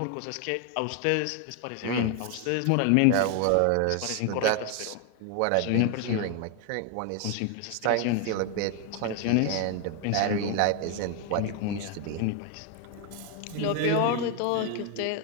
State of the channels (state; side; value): different; both; correlation 0.01